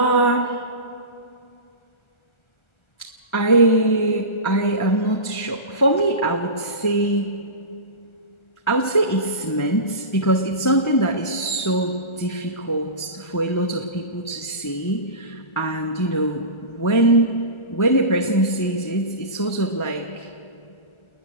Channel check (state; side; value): late; right; 1.3 ms